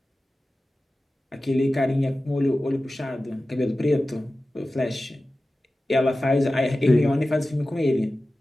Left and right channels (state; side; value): normal; both; correlation 0.95